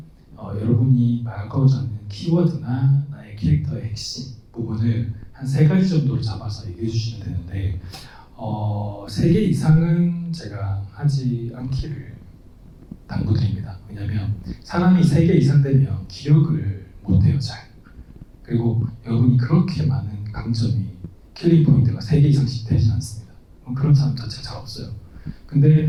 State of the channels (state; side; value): identical; both; correlation 1.00